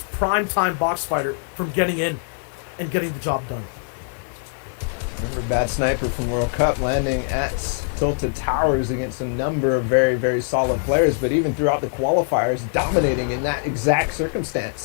prime-time box fighter from getting in and getting the job done? Remember Bad Sniper from World Cup landing at Tilted Towers against a number of very, very solid players, but even throughout the qualifiers, dominating in that exact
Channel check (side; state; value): right; silent; digital silence